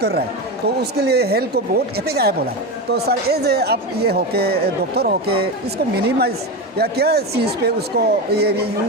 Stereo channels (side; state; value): both; normal; correlation 0.18